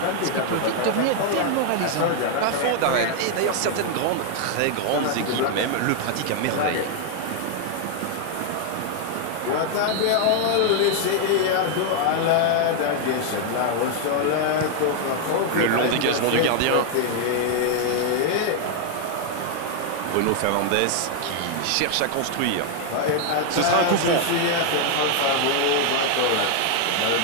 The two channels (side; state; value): both; different; correlation 0.00